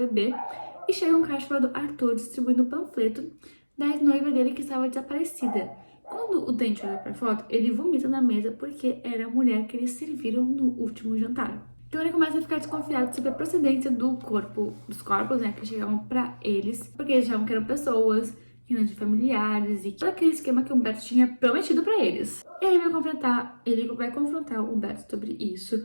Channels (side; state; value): both; inverted; correlation -1.00